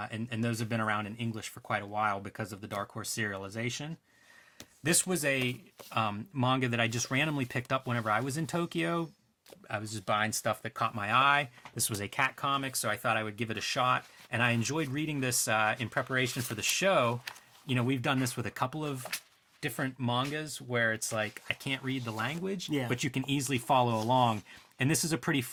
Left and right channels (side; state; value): both; identical; correlation 1.00